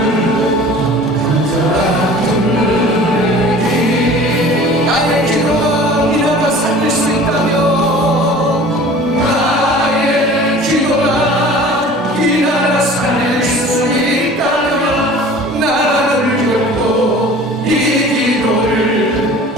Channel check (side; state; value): both; normal; correlation 0.44